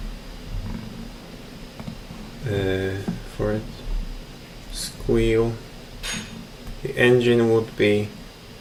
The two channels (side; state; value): both; identical; correlation 1.00